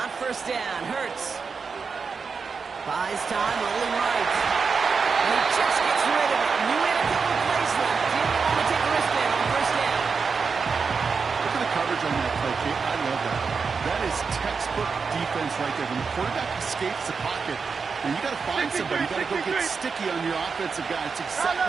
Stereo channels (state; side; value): quieter; left; 5.3 dB